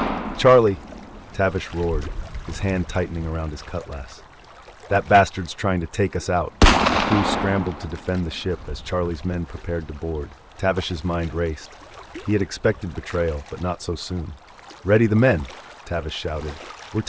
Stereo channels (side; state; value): both; identical; correlation 1.00